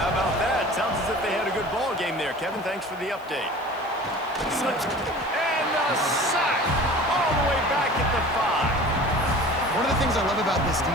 about that? Sounds as if they had a good ball game there, Kevin. Thanks for the update. And a sack all the way back at the 5. One of the things I love about this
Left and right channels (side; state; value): left; noise; hiss, 27 dB below the sound